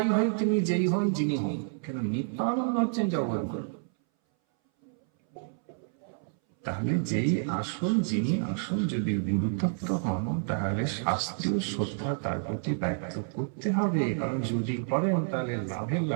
হয়ে তিনি যেই হন, যিনি হন কেন, নিত্যানন্দ হচ্ছেন জগৎগুরু। তাহলে যেই আসন, যিনি আসন যদি গুরুতত্ত্ব হন, তাহলে শাস্ত্রীয় শ্রদ্ধা তার প্রতি ব্যক্ত করতে হবে। কারণ যদি করেন তাহলে লাভের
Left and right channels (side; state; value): left; silent; 58 dB below the other